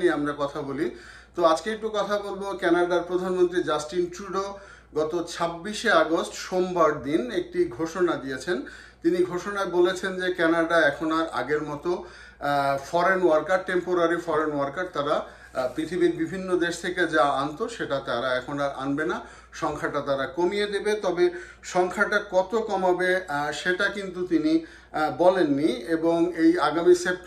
নিয়ে আমরা কথা বলি। তো আজকে একটু কথা বলবো কানাডার প্রধানমন্ত্রী জাস্টিন ট্রুডো গত 26শে আগস্ট সোমবার দিন একটি ঘোষণা দিয়েছেন। তিনি ঘোষণায় বলেছেন যে কানাডা এখন আর আগের মতো foreign worker, temporary foreign worker তারা পৃথিবীর বিভিন্ন দেশ থেকে যা আনতো সেটা তারা এখন আর আনবে না, সংখ্যাটা তারা কমিয়ে দেবে। তবে সংখ্যাটা কত কমাবে সেটা কিন্তু তিনি বলেননি। এবং এই আগামী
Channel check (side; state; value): both; identical; correlation 1.00